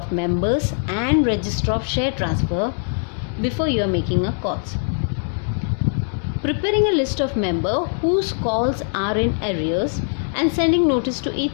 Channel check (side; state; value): right; silent; digital silence